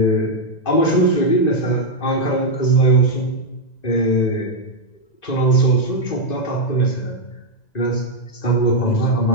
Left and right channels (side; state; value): right; late; 1.9 ms